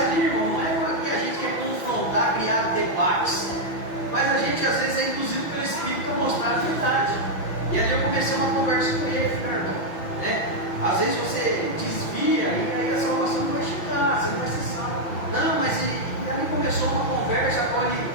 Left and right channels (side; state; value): right; late; 5.9 ms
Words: irmão, não é porque a gente quer confrontar, criar debates. Mas a gente às vezes é induzido pelo Espírito a mostrar a verdade. E ali eu comecei uma conversa com ele, irmão, né? Às vezes você desvia e aí a salvação não vai chegar, você não vai ser salvo. Não, mas e ali começou uma conversa com ele,